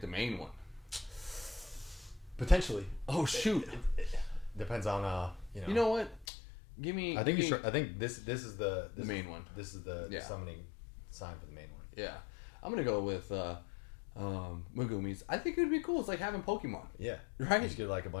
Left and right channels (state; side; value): drops out; right; at 6.2 s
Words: the main one? Potentially. Oh shoot! It depends on You know what? Give me. I think this is the main one. This is the summoning sign for the main one. Yeah, I'm gonna go with Megumi's. I think it would be cool. It's like having Pokemon. Yeah, right. You just get like a